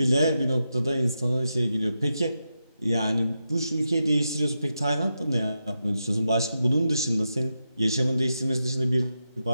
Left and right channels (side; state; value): both; inverted; correlation -0.87